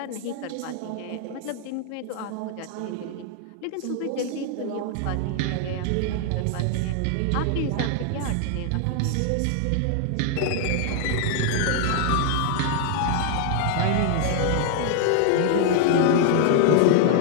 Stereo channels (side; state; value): both; different; correlation 0.00